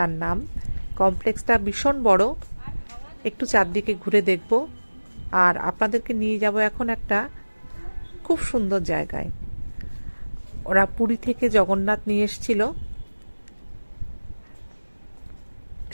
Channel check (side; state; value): both; inverted; correlation -1.00